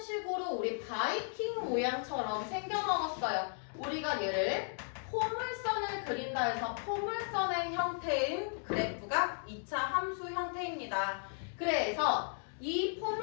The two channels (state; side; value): silent; right; 54 dB below the other